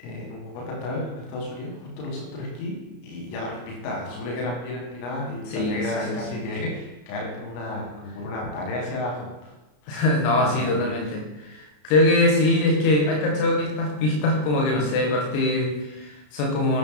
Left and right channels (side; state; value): right; late; 33 ms